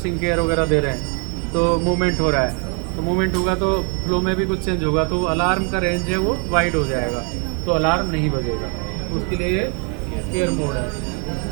केयर वगैरह दे रहे हैं, तो मूवमेंट हो रहा है, तो मूवमेंट होगा तो फ्लो में भी कुछ चेंज होगा, तो अलार्म का रेंज है वो वाइड हो जाएगा, तो अलार्म नहीं बजेगा, उसके लिए ये केयर मोड है।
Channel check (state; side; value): quieter; left; 37.4 dB